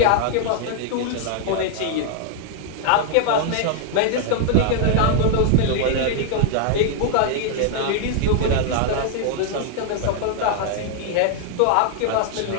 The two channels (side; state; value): both; different; correlation 0.00